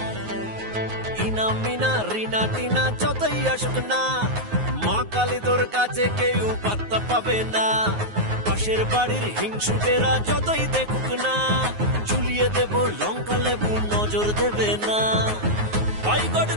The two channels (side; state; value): left; late; 9.5 ms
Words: মিনা রিনা টিনা যতই আসুক না, মা কালী তোর কাছে কেউ পাত্তা পাবে না। পাশের বাড়ির হিংসুটেরা যতই দেখুক না, ঝুলিয়ে দেব লঙ্কা লেবু নজর দেবে না। বয়কট